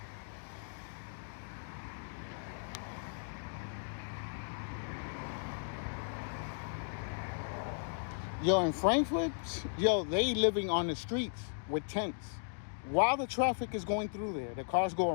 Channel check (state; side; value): silent; right; digital silence